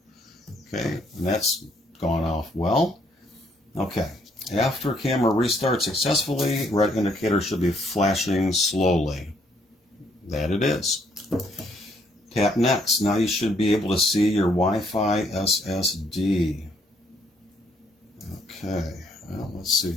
Okay, and that's gone off well. Okay, after camera restarts successfully, red indicator should be flashing slowly. That it is. Tap next. Now you should be able to see your Wi-Fi SSD. Okay, well, let's see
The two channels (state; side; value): normal; both; correlation 0.68